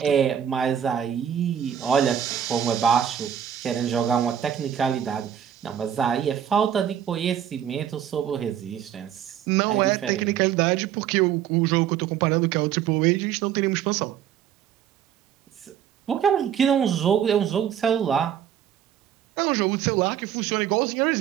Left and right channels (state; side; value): quieter; left; 9.6 dB